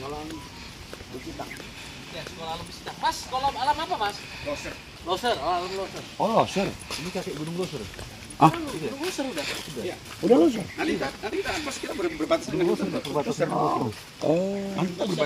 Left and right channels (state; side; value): identical; both; correlation 1.00